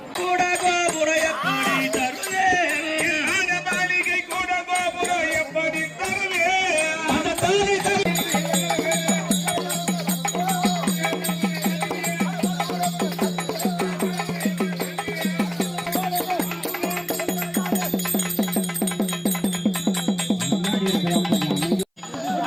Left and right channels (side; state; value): both; identical; correlation 1.00